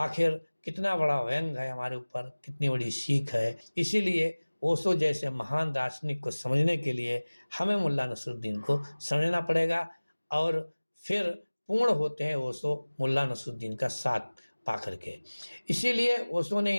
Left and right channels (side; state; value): both; inverted; correlation -1.00